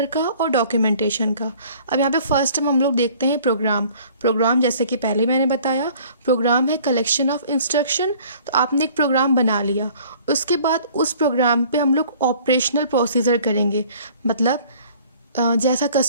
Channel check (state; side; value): inverted; both; correlation -0.52